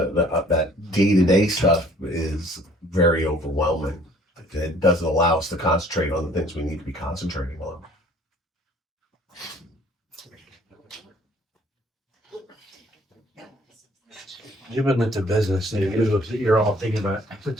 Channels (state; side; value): normal; both; correlation 0.57